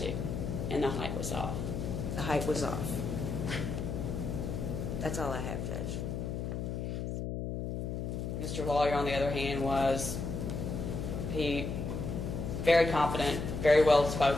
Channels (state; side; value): noise; left; hum, 3 dB below the sound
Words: And the height was off. The height was off. That's all I have, Judge. Mr. Lawyer, on the other hand, was very confident, very well